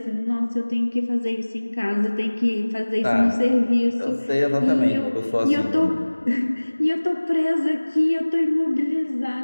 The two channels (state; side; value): inverted; both; correlation -1.00